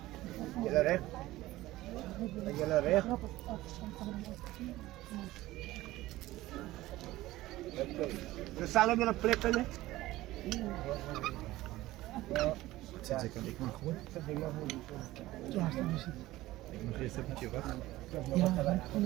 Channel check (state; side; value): quieter; left; 17.0 dB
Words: Jullie recht? Jullie recht? We staan op een plek, hè? Zet ik aan, ik mag gewoon. Ik mag eerst een beetje wachten.